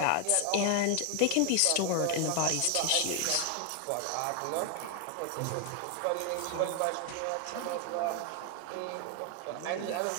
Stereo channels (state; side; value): different; both; correlation 0.00